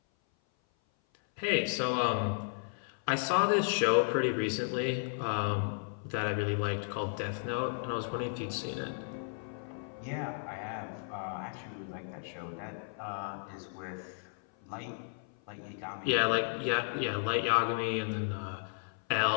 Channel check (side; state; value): right; silent; 55 dB below the other